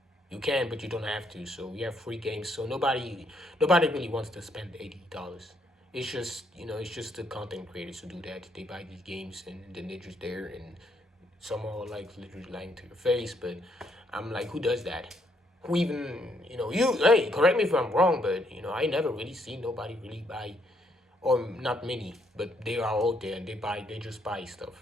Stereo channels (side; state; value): both; normal; correlation 0.72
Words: You can, but you don't have to. So we have free games. So nobody really wants to spend $80. It's just it's just the content creators who do that. They buy these games and then they're just there, and some are like literally lying to your face. But I'm like, who does that? Who even you? Hey, correct me if I'm wrong, but I never really seen nobody really buy, or not many, but they are out there and they just buy